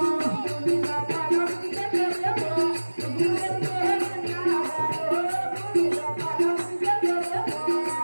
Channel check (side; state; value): both; inverted; correlation -1.00